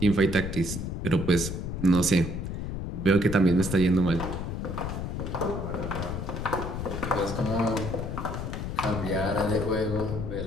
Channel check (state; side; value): noise; left; rumble, 4 dB below the sound